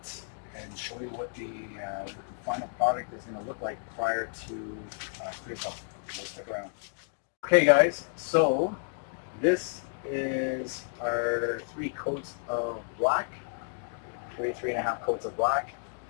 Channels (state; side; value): silent; right; digital silence